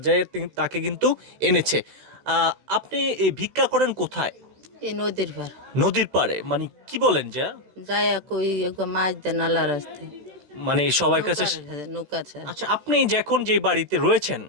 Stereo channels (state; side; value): late; left; 16 ms